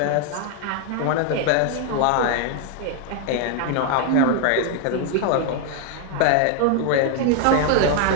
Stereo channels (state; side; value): different; both; correlation 0.00